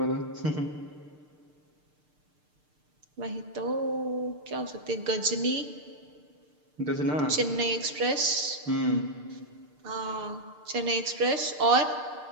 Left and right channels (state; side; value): late; left; 6.7 ms